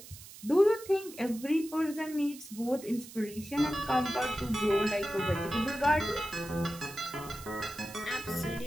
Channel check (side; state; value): right; noise; hiss, 16 dB below the sound